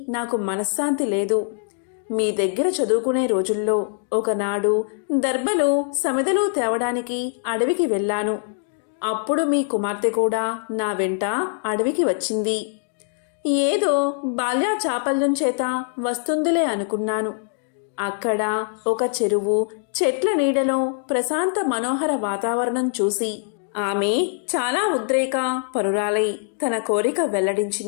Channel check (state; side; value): silent; right; digital silence